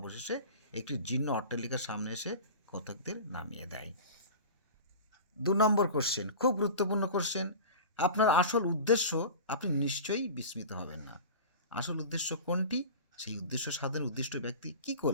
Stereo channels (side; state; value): both; inverted; correlation -0.34